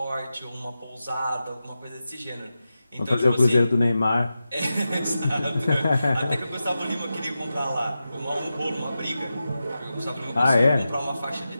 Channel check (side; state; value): both; inverted; correlation -0.92